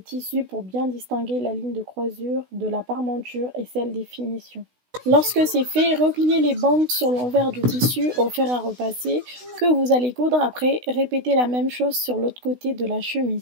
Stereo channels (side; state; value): left; late; 16 ms